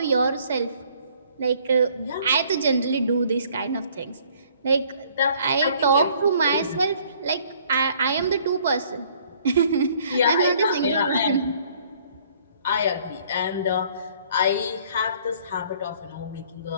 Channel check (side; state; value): both; inverted; correlation -0.59